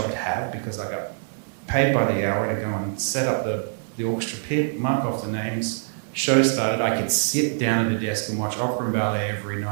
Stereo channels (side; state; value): left; silent; digital silence